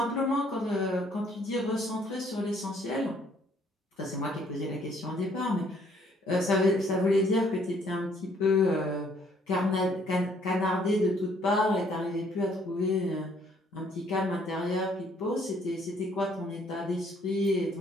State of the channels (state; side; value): normal; both; correlation 0.64